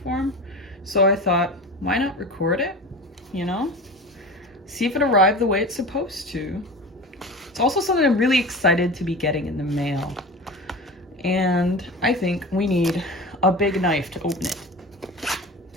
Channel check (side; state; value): both; normal; correlation 0.32